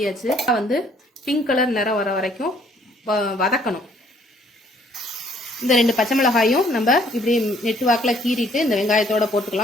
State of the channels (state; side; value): normal; both; correlation 0.62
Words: வந்து பிங்க் கலர் நிறம் வர வரைக்கும் வதக்கணும். இந்த 2 பச்சை மிளகாயும் நம்ம இப்படி நெட்டு வாக்கில் கீறிட்டு இந்த வெங்காயத்தோட